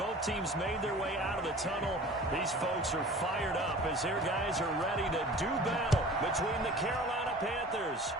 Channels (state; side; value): normal; both; correlation 0.42